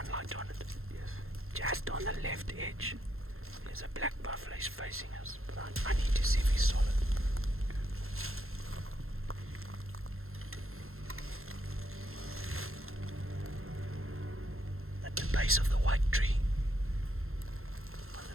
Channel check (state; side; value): late; left; 0.61 ms